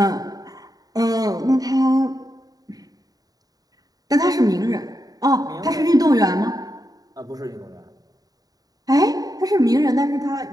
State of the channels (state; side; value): late; left; 0.18 ms